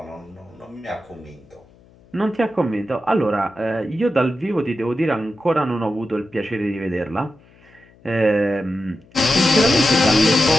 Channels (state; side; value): noise; left; hum, 28 dB below the sound